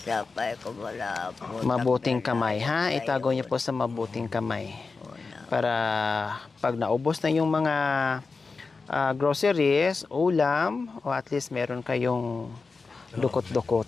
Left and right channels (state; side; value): quieter; right; 4.3 dB